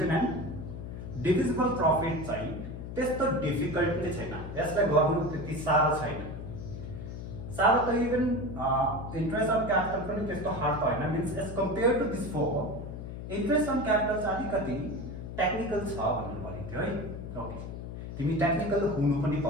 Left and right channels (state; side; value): noise; left; hum, 8 dB below the sound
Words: and divisible profit चाहिँ त्यस्तो डिफिकल्ट नै छैन. यसलाई गर्नु त्यति साह्रो छैन. साह्रो त इभन इन्ट्रेस्ट अन क्यापिटल पनि त्यस्तो हार्ड त हैन. Means as compare to this four interest on capital चाहिँ अलिकति टेक्निकल छ भन्नु भनेको थियो है. ओके, तिमी टेक्निकल हुनु पनि